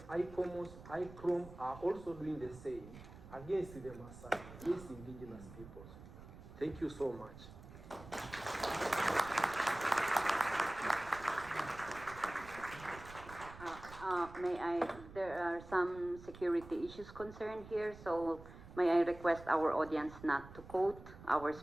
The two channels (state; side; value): noise; right; rumble, 16 dB below the sound